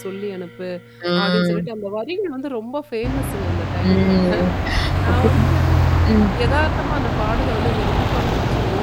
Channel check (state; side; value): identical; both; correlation 1.00